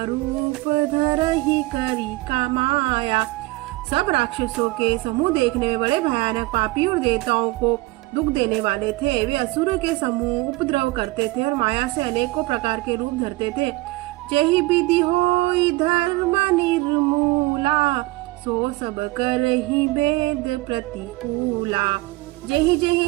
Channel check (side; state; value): left; quieter; 21.3 dB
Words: रूप धरही करी कमाया। सब राक्षसों के समूह देखने में बड़े भयानक, पापी और देवताओं को दुख देने वाले थे। वे असुरों के समूह उपद्रव करते थे और माया से अनेकों प्रकार के रूप धरते थे। जेहि विधि होई धर्म निर्मूला, सो सब करहि वेद प्रतिकूला। जेहि